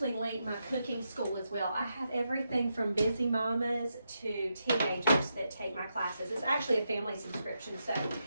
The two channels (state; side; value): inverted; both; correlation -0.84